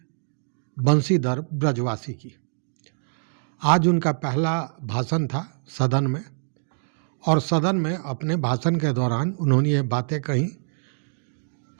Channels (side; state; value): left; silent; digital silence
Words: बंशीधर ब्रजवासी की। आज उनका पहला भाषण था सदन में और सदन में अपने भाषण के दौरान उन्होंने ये बातें कही,